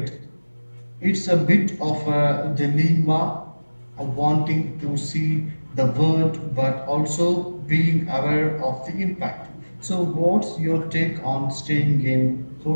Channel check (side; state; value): both; inverted; correlation -1.00